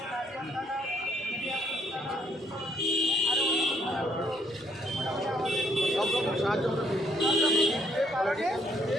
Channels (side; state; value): both; normal; correlation 0.68